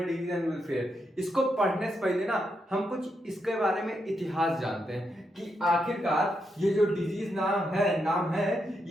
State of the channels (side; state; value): both; normal; correlation 0.82